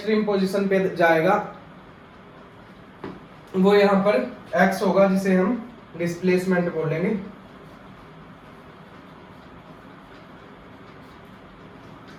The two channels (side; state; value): both; identical; correlation 1.00